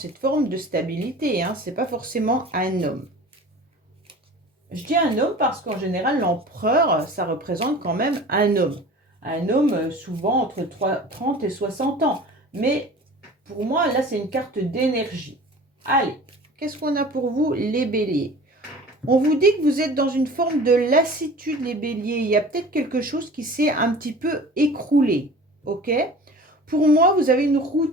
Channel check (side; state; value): both; normal; correlation 0.41